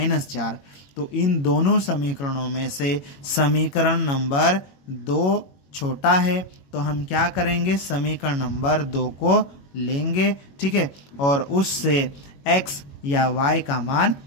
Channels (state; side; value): late; right; 22 ms